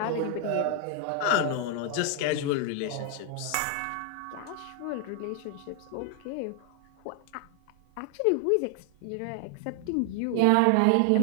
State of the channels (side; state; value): both; different; correlation 0.00